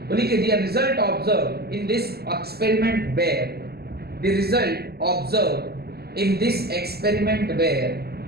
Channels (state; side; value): late; left; 0.46 ms